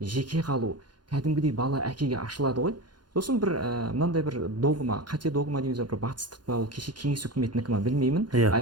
қалу. Кәдімгідей бала әкеге ашылады ғой. Сосын бір мынандай бір догма, қате догма дейміз, бір батыстық па, ол кеше кеңес үкіметінікі ма білмеймін.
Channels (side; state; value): left; late; 0.71 ms